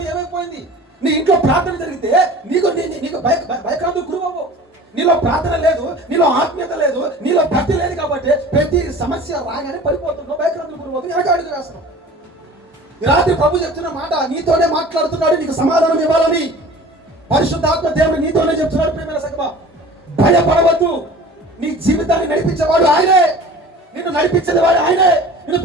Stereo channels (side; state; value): both; normal; correlation 0.42